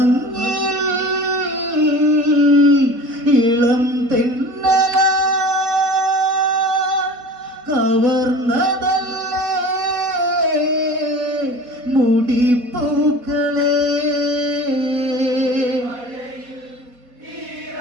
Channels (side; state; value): left; late; 4.1 ms